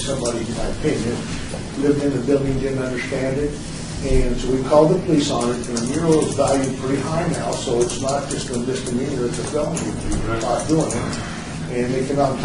in my opinion, lived in the building, didn't understand it. And so we called the police on it, and the mural is valued pretty high now, so it's not just a misdemeanor, it's a felony if you're caught doing it. And they came out and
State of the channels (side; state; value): both; identical; correlation 1.00